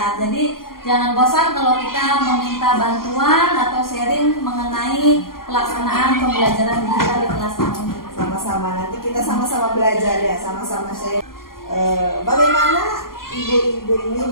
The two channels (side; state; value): right; late; 0.92 ms